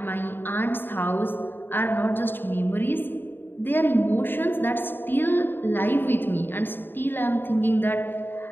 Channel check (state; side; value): late; right; 0.097 ms